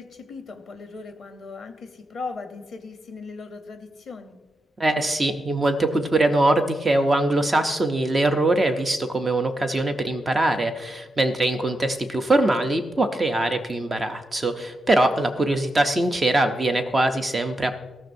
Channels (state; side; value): normal; both; correlation 0.86